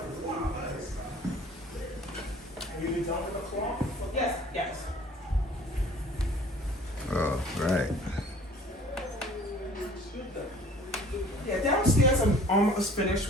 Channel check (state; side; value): normal; both; correlation 0.51